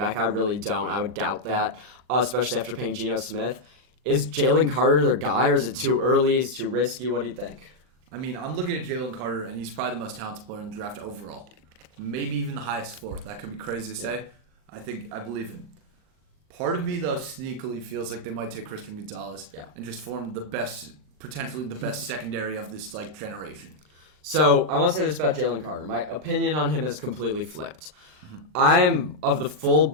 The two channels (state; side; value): late; left; 39 ms